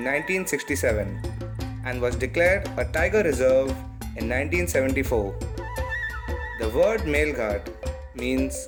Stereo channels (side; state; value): both; identical; correlation 1.00